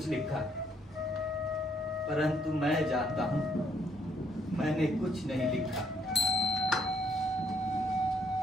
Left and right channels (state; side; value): normal; both; correlation 0.69